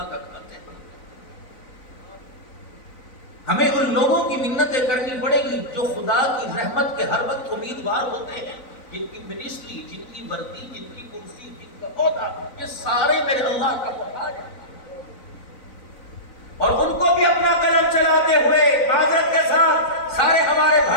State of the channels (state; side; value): late; right; 4.0 ms